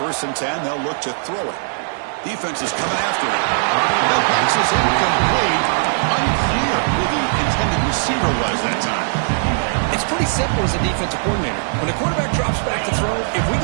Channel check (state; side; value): silent; left; 66 dB below the other